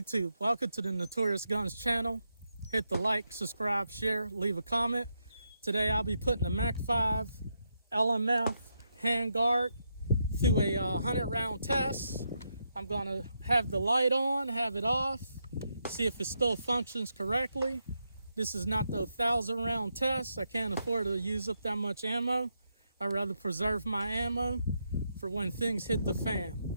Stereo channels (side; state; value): both; inverted; correlation -0.82